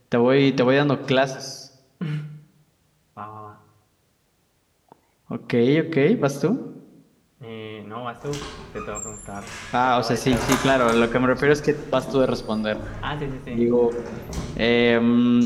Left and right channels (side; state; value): both; identical; correlation 1.00